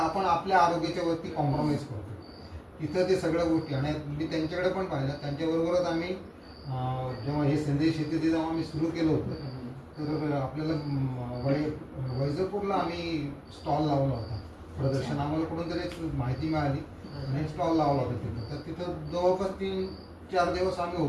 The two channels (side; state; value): both; identical; correlation 1.00